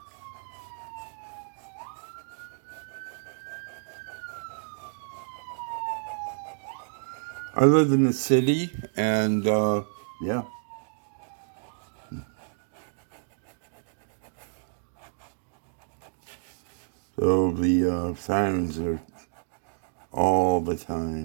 I live in the city, and yeah. So the sirens are all the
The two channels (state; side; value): silent; left; digital silence